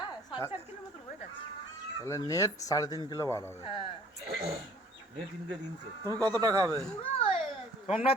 তাহলে নেট 3.5 কিলো বার হবে। তুমি কতটা খাবে?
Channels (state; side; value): normal; both; correlation 0.54